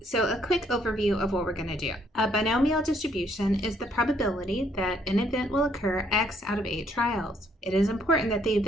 So a quick overview of what we're going to do. A binomial distribution is the probability that an event will occur X out of 8 trials. It is important that the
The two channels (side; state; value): both; normal; correlation 0.68